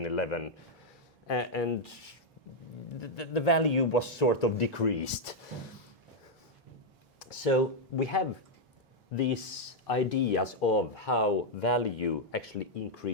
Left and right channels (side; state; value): both; normal; correlation -0.01